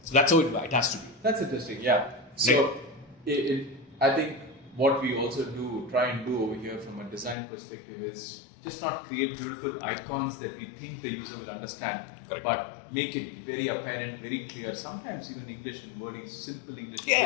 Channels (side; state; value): right; drops out; at 7.4 s